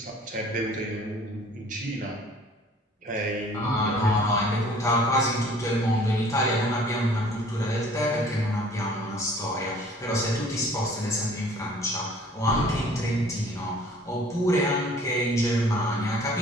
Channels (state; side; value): normal; both; correlation 0.53